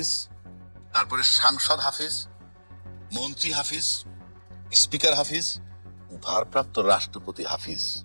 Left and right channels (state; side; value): inverted; both; correlation -1.00